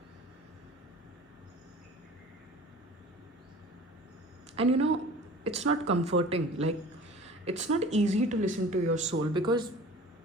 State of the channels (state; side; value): normal; both; correlation 0.43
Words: And it's not comforting. Like, it's not easy to listen to your soul, because